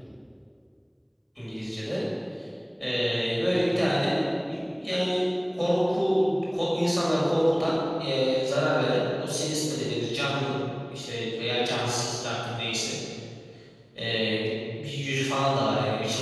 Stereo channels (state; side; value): identical; both; correlation 1.00